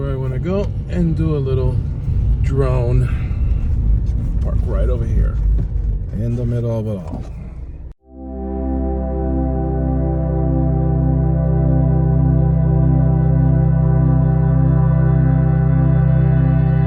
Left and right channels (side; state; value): both; identical; correlation 1.00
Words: I want to go and do a little drone. Park right over here in the middle of it all.